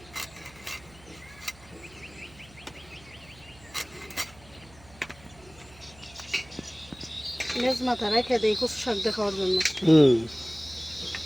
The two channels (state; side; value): noise; right; hum, 24 dB below the sound